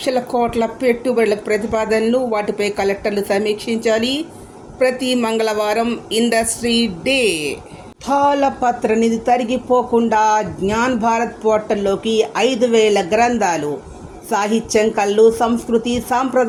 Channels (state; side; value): identical; both; correlation 1.00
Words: కోట్ల పెట్టుబడుల ప్రతిపాదనలు, వాటిపై కలెక్టర్లు సమీక్షించాలి. ప్రతి మంగళవారం ఇండస్ట్రీ డే. తాళపత్ర నిధి తరిగిపోకుండా జ్ఞాన్ భారత్ పోర్టల్లోకి 5000 గ్రంథాలు. సాహిత్యం, కళలు, సంస్కృతి,